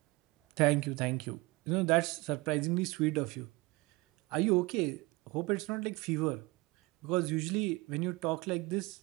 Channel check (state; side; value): quieter; left; 23.9 dB